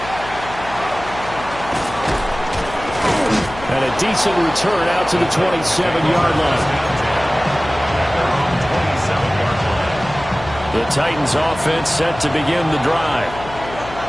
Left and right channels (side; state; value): left; noise; hum, 13 dB below the sound